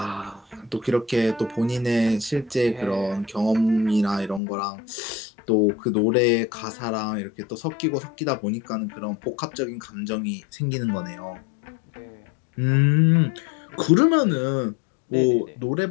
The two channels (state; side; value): drops out; right; at 4.4 s